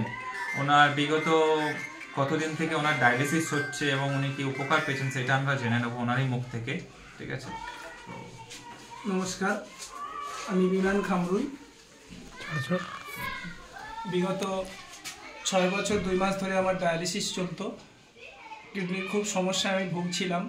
ওনার বিগত কতদিন থেকে ওনার ডায়ালিসিস হচ্ছে এবং উনি কি উপকার পেয়েছেন সেটা আমরা জেনে নেবো ওনারই মুখ থেকে। ঠিক আছে, নমস্কার, আমি বিমান খামরুল। বিগত 6 বছর 2 মাস ধরে আমার ডায়ালিসিস চলতো। কিডনির খুব সমস্যায় আমি ভুগছিলাম।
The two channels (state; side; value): identical; both; correlation 1.00